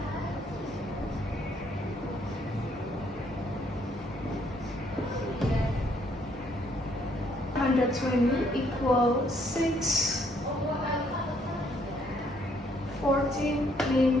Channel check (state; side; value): normal; both; correlation 0.67